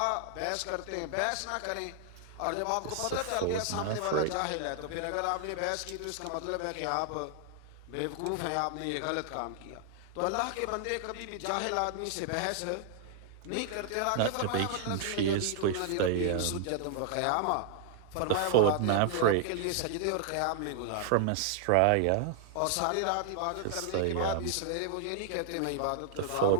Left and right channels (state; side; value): different; both; correlation 0.00